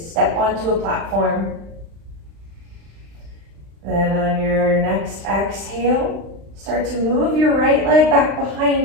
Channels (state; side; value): late; left; 36 ms